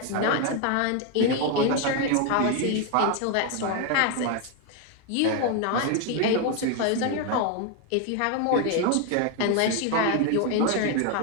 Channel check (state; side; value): different; both; correlation 0.01